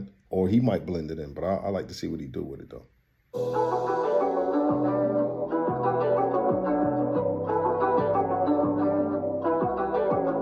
or he might blend it in. But I like to see what he do with it though.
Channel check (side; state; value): both; identical; correlation 1.00